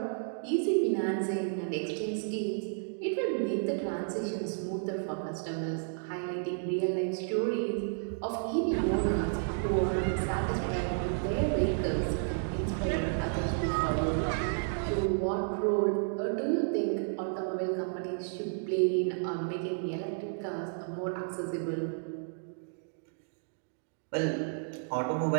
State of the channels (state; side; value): silent; left; digital silence